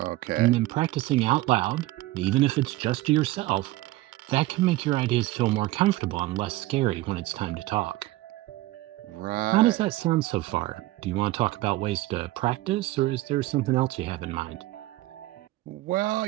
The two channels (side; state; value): left; quieter; 17.8 dB